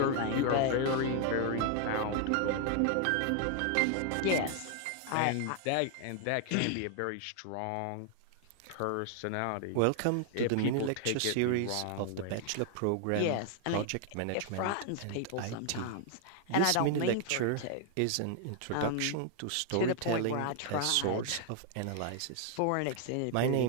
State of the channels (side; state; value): both; different; correlation 0.00